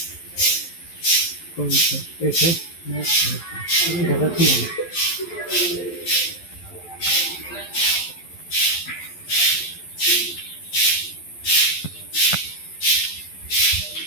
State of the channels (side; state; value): right; late; 11 ms